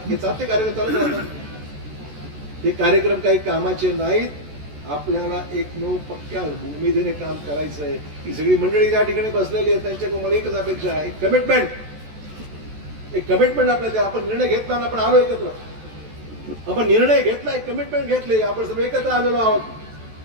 हे चालते कार्यक्रम चालू राहतात. हे कार्यक्रम काही कामाचे नाहीत. आपल्याला एकमेव पक्क्या उमेदीने काम करायचं आहे. ही सगळी मंडळी या ठिकाणी बसलेली आहे, त्यांच्याकडून मला एकच अपेक्षा आहे, कमिटमेंट. एक कमिटमेंट आपल्याला द्या. आपण निर्णय घेतला ना, आपण आलो एकत्र, आपण निर्णय घेतलाय, कमिटमेंट घेतले, आपण सर्व एकत्र आलेलो आहोत.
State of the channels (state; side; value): late; left; 14 ms